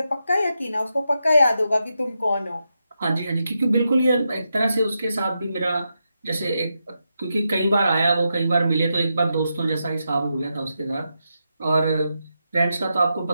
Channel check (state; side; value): inverted; both; correlation -0.86